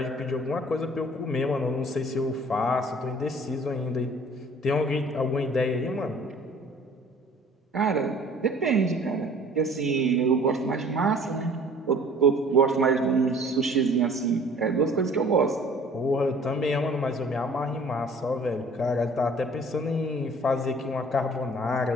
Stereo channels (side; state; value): both; normal; correlation 0.51